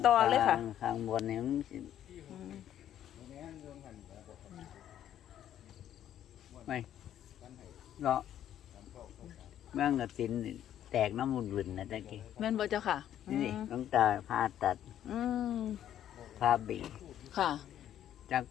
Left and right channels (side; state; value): right; quieter; 11.0 dB